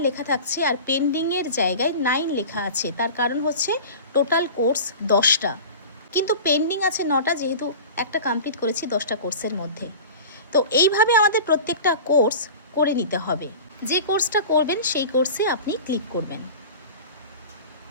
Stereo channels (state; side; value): inverted; both; correlation -0.36